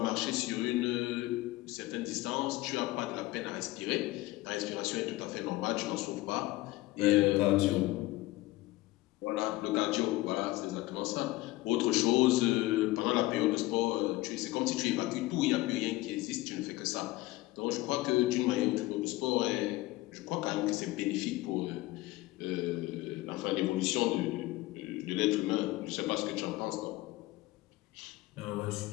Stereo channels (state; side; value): quieter; right; 19.0 dB